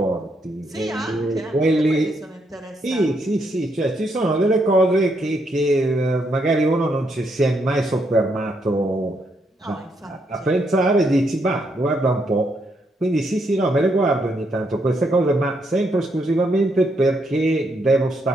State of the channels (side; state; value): both; normal; correlation 0.77